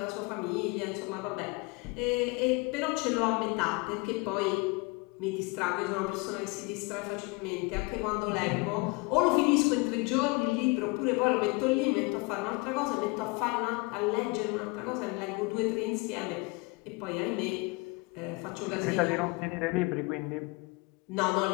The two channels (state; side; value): quieter; right; 27.3 dB